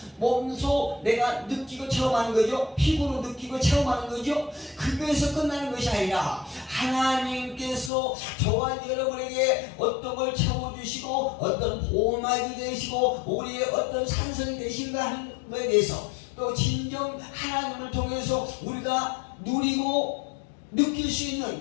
몸소 내가 느끼고 체험하는 거죠. 피부로 느끼고 체험하는 거죠. 그거에서 끝나는 것이 아니라 하나님께서 저와 여러분에게 어떤 걸 채워주시고 어떤 보호막이 되시고 우리의 어떤 산성이 되신가 하는 것에 대해서 또 진정 하나님을 통해서 우리가 누리고 느낄 수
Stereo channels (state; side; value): drops out; right; at 7.9 s